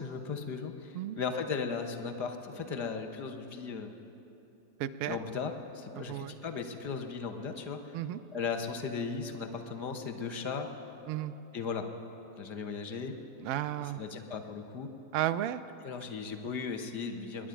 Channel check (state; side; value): late; left; 4.9 ms